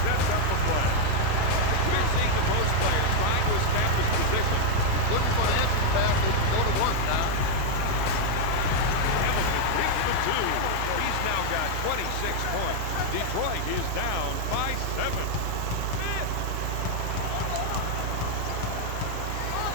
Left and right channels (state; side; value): different; both; correlation 0.00